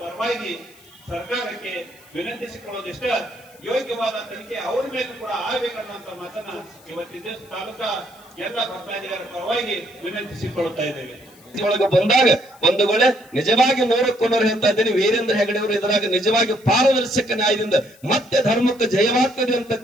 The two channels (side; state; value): left; noise; hiss, 26 dB below the sound